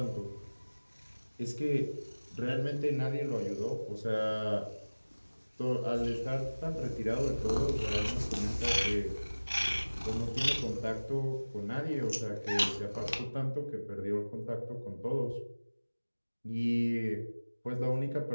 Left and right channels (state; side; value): inverted; both; correlation -1.00